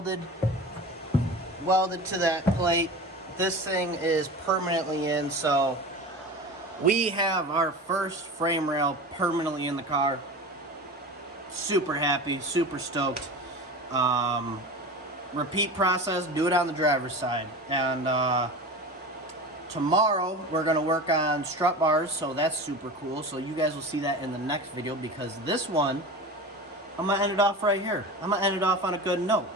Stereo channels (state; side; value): normal; both; correlation 0.31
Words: to that plate. This thing is permanently in, so we have our first frame rail permanently in the car. Super happy, super stoked. Repeat process, do it on the driver's side. And tomorrow we're going to work on strut bars, so that's super cool. So you guys will see that in the next video, because this one, I'm going to end it off right here. I'm going to end it off on a good note.